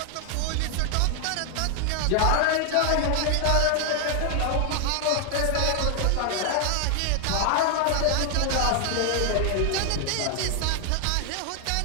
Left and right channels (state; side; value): different; both; correlation 0.00